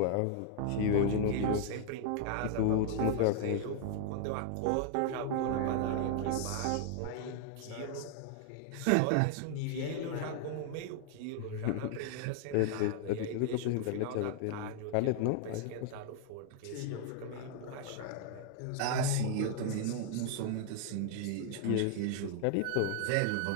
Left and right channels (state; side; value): different; both; correlation 0.00